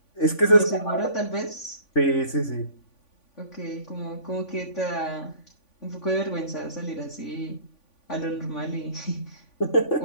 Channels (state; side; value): late; right; 3.5 ms